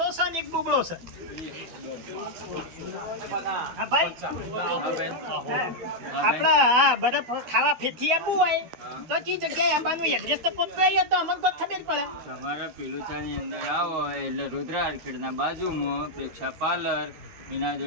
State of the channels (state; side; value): late; left; 12 ms